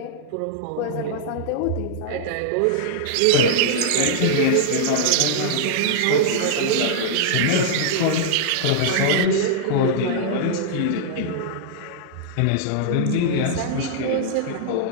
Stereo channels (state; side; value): different; both; correlation -0.01